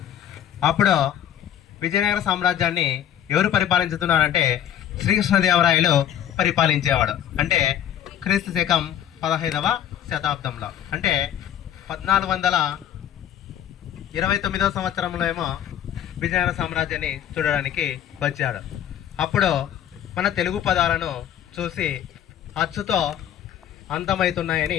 అప్పుడు విజయనగర సామ్రాజ్యాన్ని ఎవరు పరిపాలించుతున్నారంటే శ్రీకృష్ణదేవరాయలు పరిపాలించేవాడు. అంటే క్రీస్తు శకం 15వ శతాబ్దంలో, అంటే 1429వ సంవత్సరంలో ఏమో విజయనగర సామ్రాజ్యాన్ని చూడడానికి వచ్చాడు. అప్పుడు మన తెలుగు పదాలను చూసి అచ్చుతో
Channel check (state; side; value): quieter; right; 10.3 dB